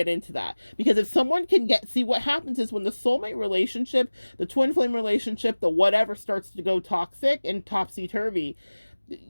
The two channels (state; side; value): inverted; both; correlation -1.00